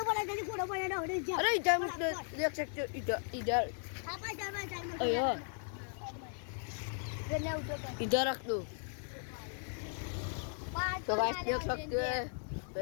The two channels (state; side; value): silent; right; 53 dB below the other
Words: पड़ा ना अरे इधर देख सकते हो इधर इधर इधर रख दो तो गाइस देख सकते हो